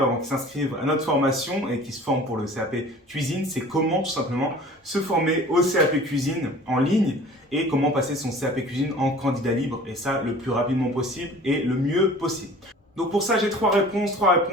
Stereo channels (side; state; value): both; normal; correlation 0.45